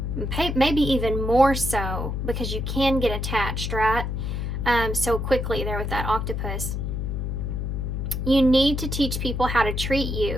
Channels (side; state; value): left; noise; hum, 2 dB below the sound